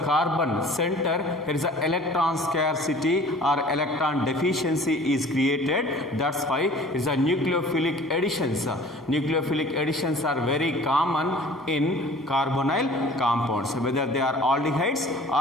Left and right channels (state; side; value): normal; both; correlation 0.48